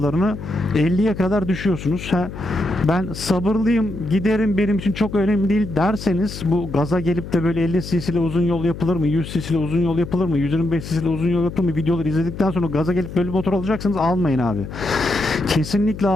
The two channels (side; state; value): left; noise; hum, 10 dB below the sound